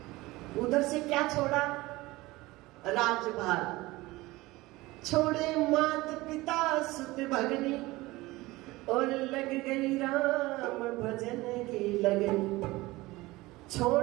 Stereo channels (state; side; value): quieter; left; 20.1 dB